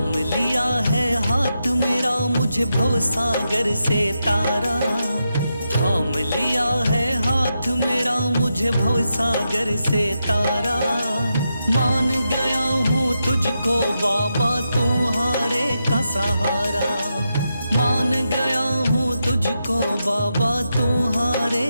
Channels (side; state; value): both; inverted; correlation -0.86